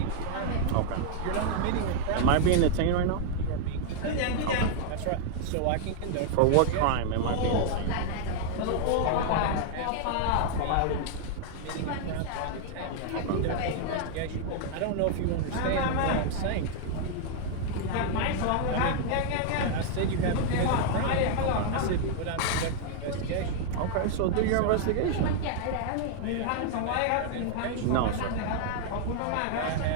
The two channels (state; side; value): different; both; correlation 0.00